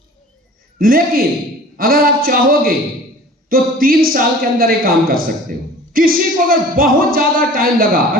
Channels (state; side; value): normal; both; correlation 0.44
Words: लेकिन अगर आप चाहोगे तो 3 साल के अंदर ये काम कर सकते हो। किसी को अगर बहुत ज्यादा टाइम लगा,